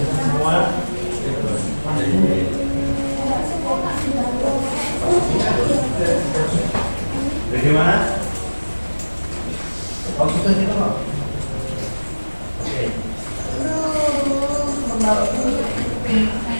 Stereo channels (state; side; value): inverted; both; correlation -1.00